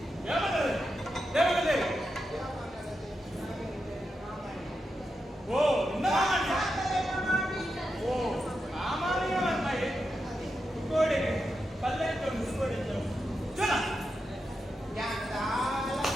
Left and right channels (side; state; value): both; normal; correlation 0.87